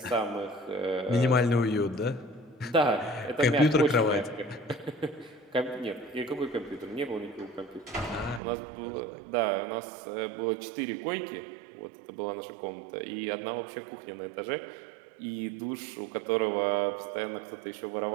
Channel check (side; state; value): left; drops out; at 8.4 s